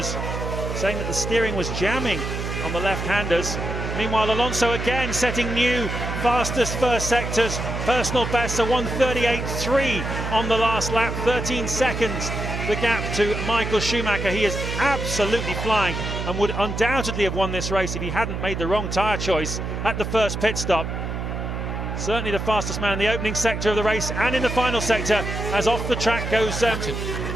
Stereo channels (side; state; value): right; noise; hum, 4 dB below the sound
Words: saying that the steering was jamming on the left-handers. Meanwhile, Alonso again setting new fastest first sectors. Personal best, a 1:38.3 on the last lap, 13 seconds. The gap to Michael Schumacher. He is absolutely flying and would undoubtedly have won this race if he hadn't made the wrong tyre choice at the first pit stop. Certainly the fastest man in the opening sector of the race and in the final sector, as off the track goes